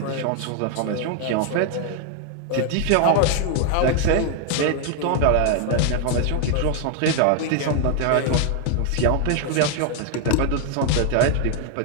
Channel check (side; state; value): both; different; correlation 0.01